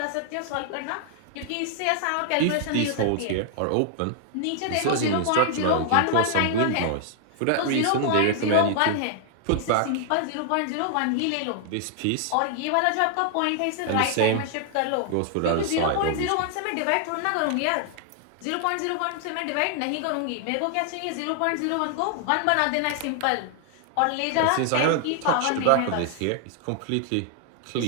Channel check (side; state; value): both; different; correlation 0.00